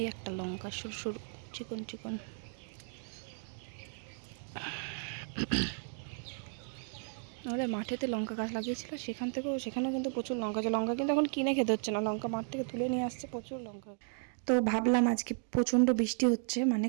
একটা লঙ্কা সরু সরু চিকন চিকন। আমাদের মাঠেতে লঙ্কা গাছ লাগিয়েছিল, সেখানেও কিন্তু প্রচুর লঙ্কা আছে। লঙ্কা কিন্তু এখন কিনে খেতে হচ্ছে না, লঙ্কা মাঠ থেকে তুলে নিয়ে আসছে, প্রচুর লঙ্কা। তো ভাবলাম আজকে প্রচণ্ড বৃষ্টি হচ্ছে, মানে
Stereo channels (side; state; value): left; silent; 55 dB below the other